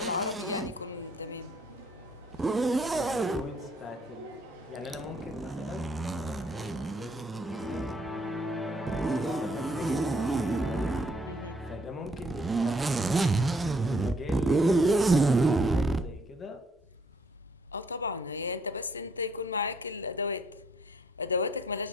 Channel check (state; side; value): normal; both; correlation 0.67